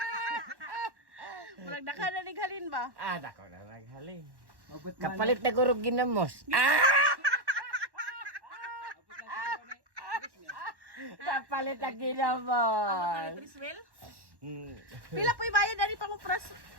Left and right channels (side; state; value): left; late; 1.1 ms